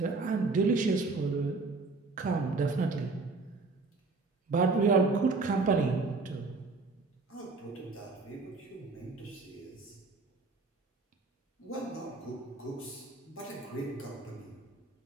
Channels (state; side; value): quieter; left; 3.8 dB